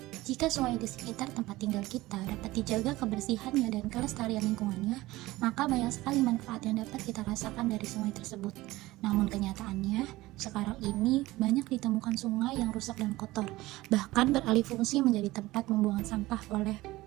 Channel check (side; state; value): left; quieter; 18.5 dB